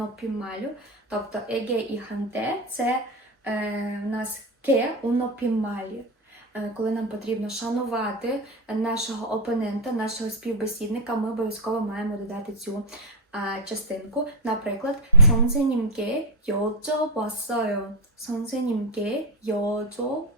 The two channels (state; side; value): normal; both; correlation 0.08